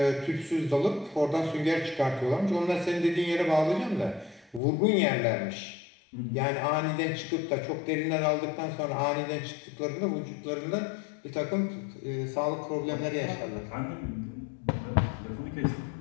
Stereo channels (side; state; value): right; drops out; at 4.6 s